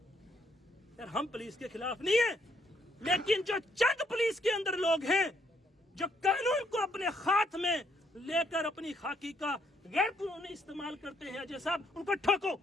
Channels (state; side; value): normal; both; correlation 0.71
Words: यार। हम पुलिस के खिलाफ नहीं है, लेकिन जो चंद पुलिस के अंदर लोग हैं जो कानून को अपने हाथ में लेकर अपनी खाकी का गैर कानूनी इस्तेमाल करते हैं, अजय साहब उनको ठोको,